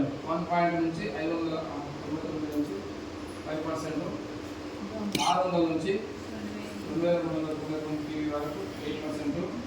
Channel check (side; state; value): both; identical; correlation 1.00